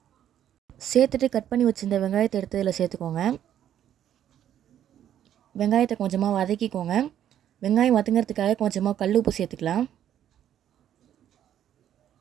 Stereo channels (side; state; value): left; quieter; 10.6 dB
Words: சேர்த்துட்டு கட் பண்ணி வச்சுருந்த வெங்காயத்தை எடுத்து இதில் சேர்த்துக்கோங்க. வெங்காயத்தை கொஞ்சமாக வதக்கிக்கோங்க. வெங்காயம் வதங்கிறதுக்காக கொஞ்சமாக கல் உப்பு சேர்த்துக்கலாம்.